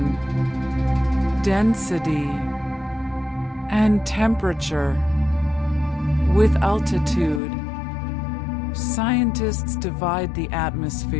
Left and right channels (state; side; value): drops out; right; at 7.4 s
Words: density, and temperature. With altitude, scientists divide the